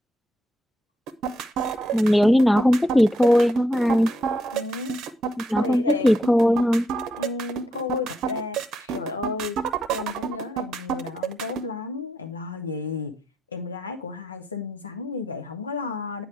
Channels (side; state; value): both; normal; correlation 0.80